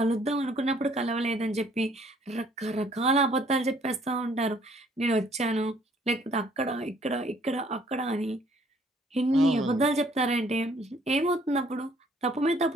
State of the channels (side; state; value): both; normal; correlation 0.62